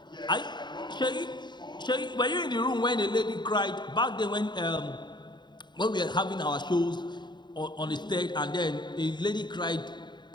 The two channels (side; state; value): right; late; 0.22 ms